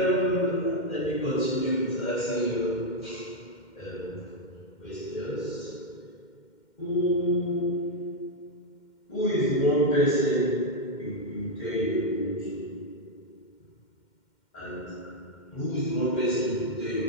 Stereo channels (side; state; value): right; late; 2.1 ms